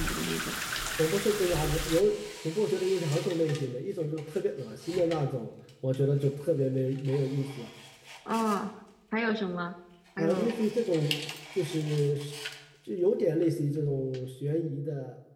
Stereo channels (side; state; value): both; identical; correlation 1.00